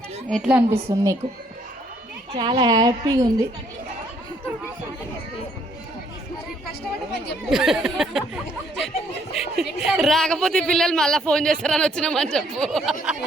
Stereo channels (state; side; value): normal; both; correlation 0.67